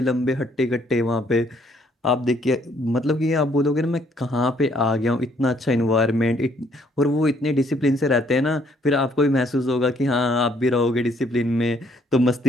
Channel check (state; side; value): normal; both; correlation 0.66